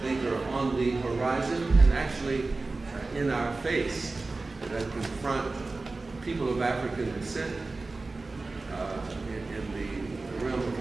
think are on the horizon and actually in our face that confront people of African descent in the realm of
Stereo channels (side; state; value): left; quieter; 3.5 dB